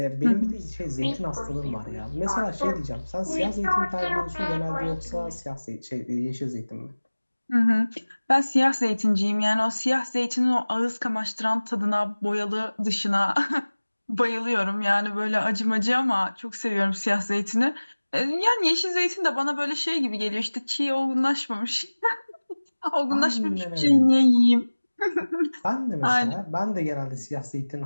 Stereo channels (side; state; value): both; inverted; correlation -1.00